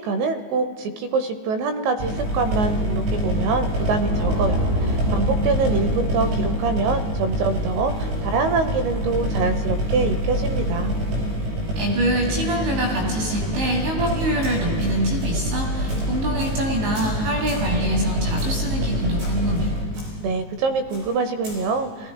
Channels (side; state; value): left; late; 19 ms